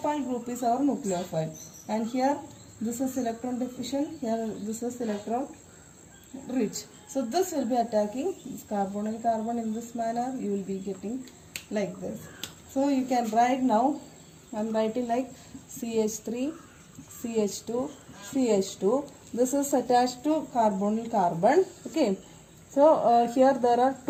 group is our nucleophile. And here this is electron deficient, here this is electron rich. So this will be attacking this carbonyl carbon in this manner. You will be getting like this. So you can write now. I am writing like CH3, CH2, CH2. This is attached to carbonyl carbon. Okay. So here there are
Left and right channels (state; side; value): identical; both; correlation 1.00